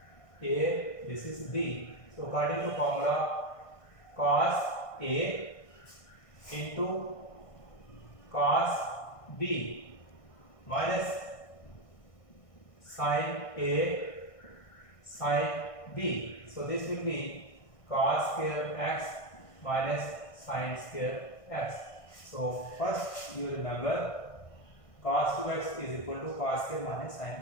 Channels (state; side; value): late; right; 1.6 ms